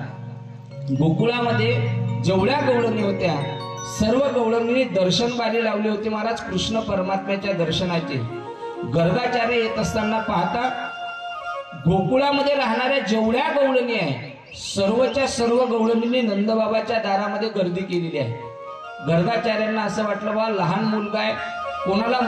गोकुळामध्ये जेवढ्या गवळणी होत्या सर्व गवळणींनी दर्शन बारी लावली होती महाराज कृष्ण परमात्म्याच्या दर्शनाचे. गर्गाचार्य येत असताना पाहता गोकुळामध्ये राहणाऱ्या जेवढ्या गवळणी आहे सर्वच्या सर्व गवळणींनी नंदबाबाच्या दारामध्ये गर्दी केलेली आहे. गर्गाचार्यांना असं वाटलं बा लहान मुलगा आहे, कोणाला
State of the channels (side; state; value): both; identical; correlation 1.00